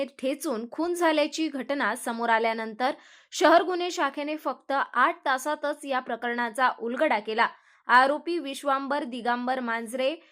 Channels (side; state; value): both; identical; correlation 1.00